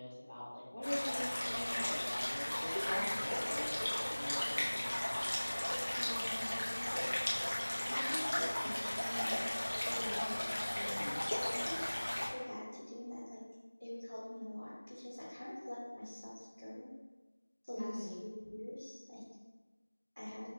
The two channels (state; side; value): inverted; both; correlation -1.00